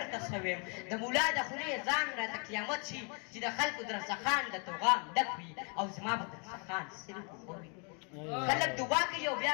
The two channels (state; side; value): quieter; right; 36.5 dB